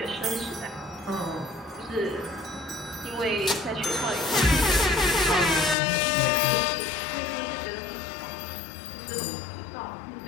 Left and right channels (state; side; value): drops out; right; at 5.8 s